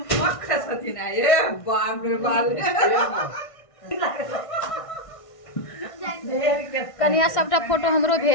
कनिया सबटा फोटो हमरो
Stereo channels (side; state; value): right; late; 1.5 ms